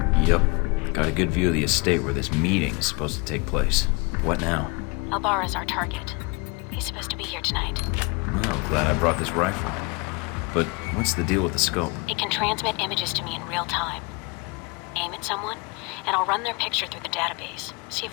Yep. Got a good view of the estate where this meeting is supposed to take place. What now? Albara's our target. He's supposed to be here tonight. Well, glad I brought this rifle. But what's the deal with the scope? It can transmit images to me in real time. Aim at someone, and I'll run their picture through the database. See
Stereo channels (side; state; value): right; quieter; 29.0 dB